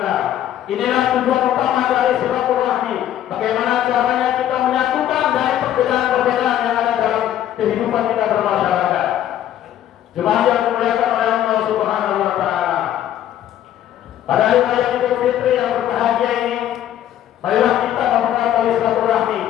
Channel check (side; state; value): right; quieter; 11.5 dB